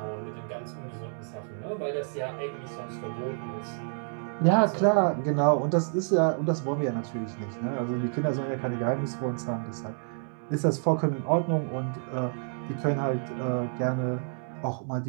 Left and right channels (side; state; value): left; silent; 59 dB below the other